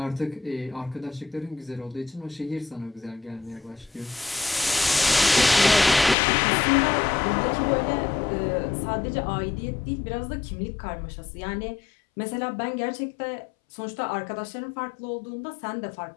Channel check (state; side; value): drops out; right; at 6.2 s